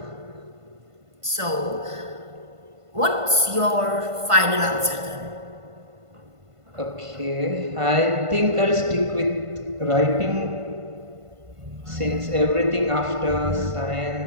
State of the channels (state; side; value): late; left; 1.5 ms